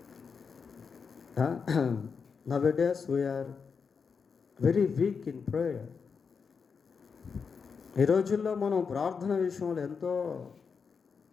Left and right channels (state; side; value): quieter; right; 5.7 dB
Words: Nowadays we are very weak in prayer. ఈ రోజుల్లో మనం ప్రార్థన విషయంలో ఎంతో